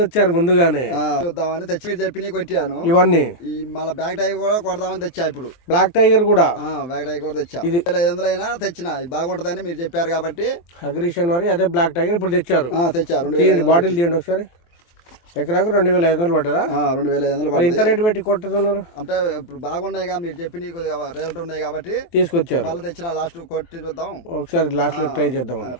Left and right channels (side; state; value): right; late; 23 ms